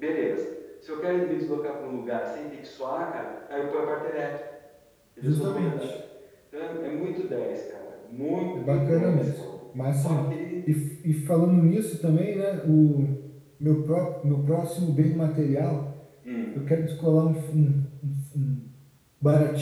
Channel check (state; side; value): identical; both; correlation 1.00